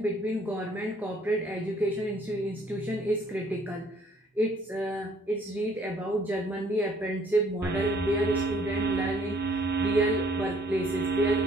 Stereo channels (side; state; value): both; normal; correlation 0.61